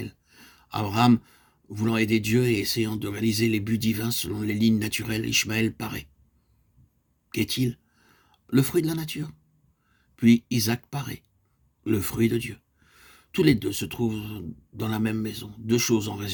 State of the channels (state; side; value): identical; both; correlation 1.00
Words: Abraham, voulant aider Dieu et essayant de réaliser les buts divins selon les lignes naturelles, Ishmaël paraît. Qu'est-il? Le fruit de la nature. Puis Isaac paraît, le fruit de Dieu. Tous les deux se trouvent dans la même maison. Deux choses en